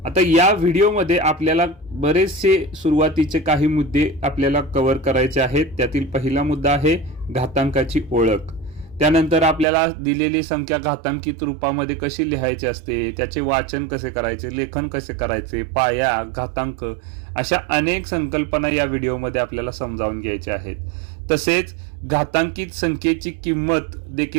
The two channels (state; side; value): drops out; left; at 9.7 s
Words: आता या व्हिडिओमध्ये आपल्याला बरेचसे सुरुवातीचे काही मुद्दे आपल्याला कव्हर करायचे आहेत। त्यातील पहिला मुद्दा आहे घातांकाची ओळख। त्यानंतर आपल्याला दिलेली संख्या घातांकित रूपामध्ये कशी लिहायची असते, त्याचे वाचन कसे करायचे, लेखन कसे करायचे, पाया, घातांक अशा अनेक संकल्पना या व्हिडिओमध्ये आपल्याला समजावून घ्यायच्या आहेत। तसेच घातांकित संख्येची किंमत